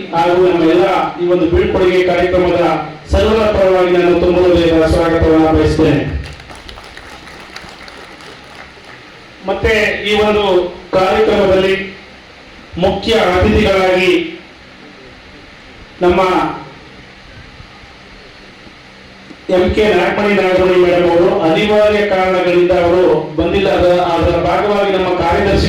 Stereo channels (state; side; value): identical; both; correlation 1.00